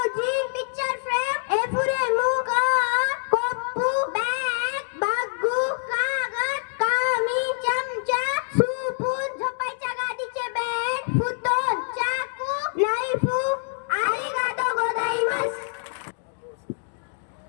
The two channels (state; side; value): silent; right; digital silence